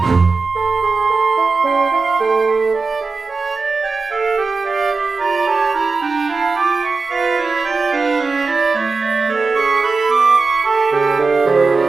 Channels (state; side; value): quieter; left; 4.2 dB